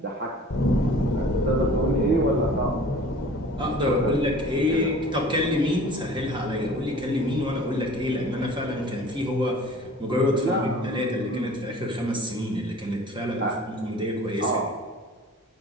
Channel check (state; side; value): normal; both; correlation 0.46